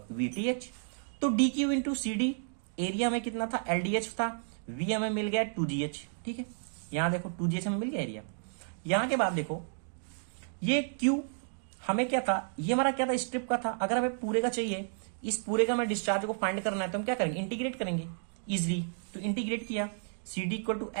VTH। तो DQ इंटू CD एरिया में कितना था, LDH था, V हमें मिल गया 2GH, ठीक है। यहां देखो 2GH हमें मिल गया एरिया। यहां के बाद देखो ये Q हमें क्या था, ये हमारा क्या था, स्ट्रिप का था। अगर हमें पूरे का चाहिए, इस पूरे का हमें डिस्चार्ज को फाइंड करना है तो हम क्या करेंगे, इंटीग्रेट करेंगे इजिली। तो इंटीग्रेट किया, CD equal to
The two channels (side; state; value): left; silent; digital silence